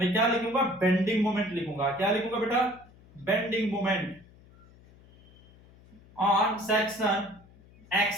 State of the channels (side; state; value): left; noise; hum, 25 dB below the sound